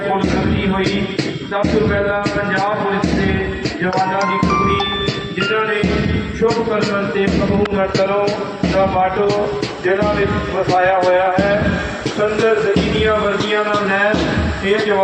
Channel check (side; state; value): both; identical; correlation 1.00